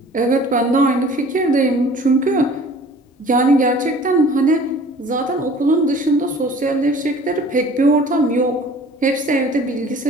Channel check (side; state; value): both; normal; correlation 0.48